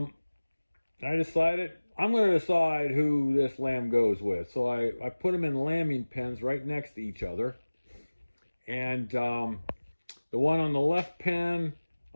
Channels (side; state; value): both; inverted; correlation -1.00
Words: decided I'm going to decide who this lamb goes with. So I put them in lambing pens right next to each other. And the one on the left pen,